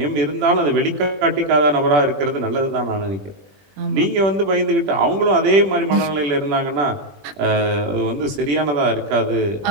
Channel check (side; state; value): left; late; 20 ms